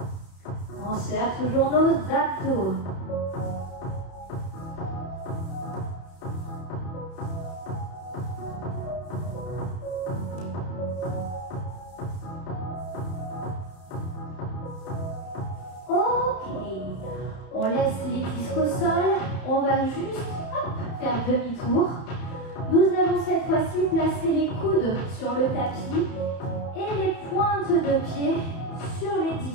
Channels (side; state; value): right; late; 31 ms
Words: On serre toujours nos abdos. On laisse les disques au sol, on va juste faire demi-tour. Nous allons cette fois-ci placer les coudes sur le tapis et les pointes de pied sur les